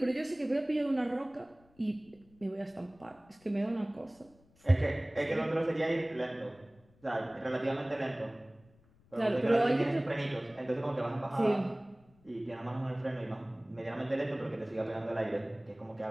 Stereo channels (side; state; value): left; noise; rumble, 30 dB below the sound